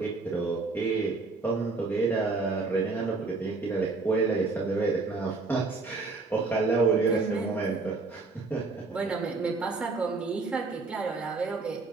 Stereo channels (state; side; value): quieter; left; 3.9 dB